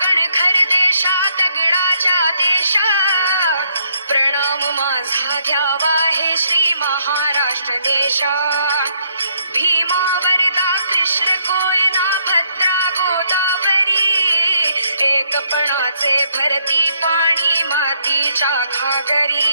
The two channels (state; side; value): inverted; both; correlation -0.70